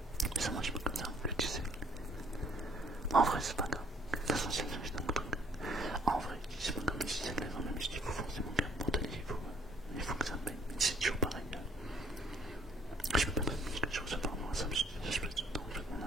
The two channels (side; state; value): both; normal; correlation 0.61